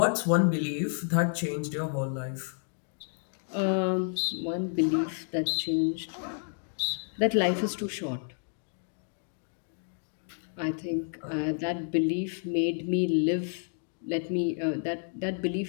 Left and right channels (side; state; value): right; silent; digital silence